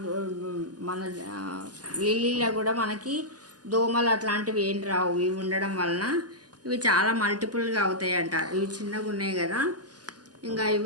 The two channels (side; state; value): left; late; 0.69 ms